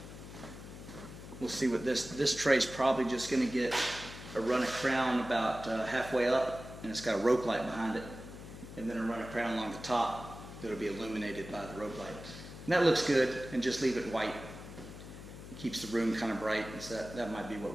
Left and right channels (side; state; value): left; noise; hum, 13 dB below the sound